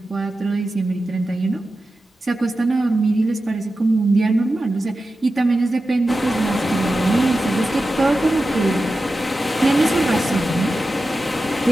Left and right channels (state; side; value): normal; both; correlation 0.93